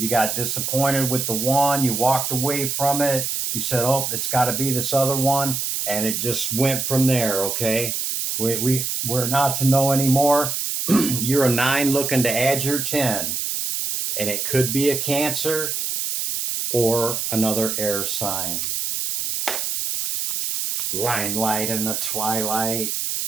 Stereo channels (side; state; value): right; noise; hiss, 1 dB below the sound